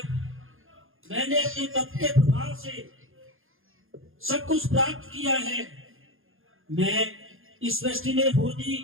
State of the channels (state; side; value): late; left; 0.60 ms